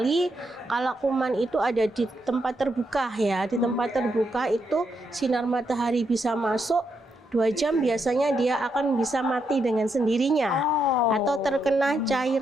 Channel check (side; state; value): both; normal; correlation 0.80